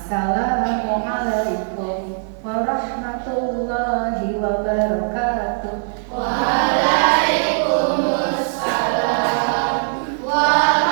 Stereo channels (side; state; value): left; silent; 56 dB below the other